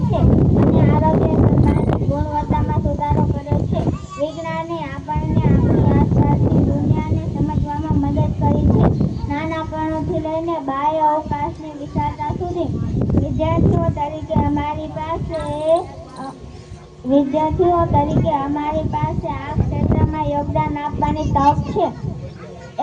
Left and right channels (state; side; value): identical; both; correlation 1.00